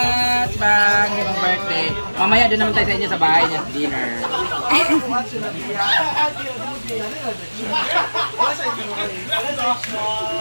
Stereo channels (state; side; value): inverted; both; correlation -1.00